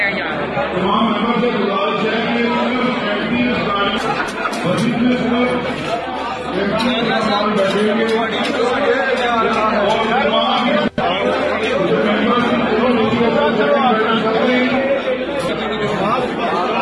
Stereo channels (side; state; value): both; identical; correlation 1.00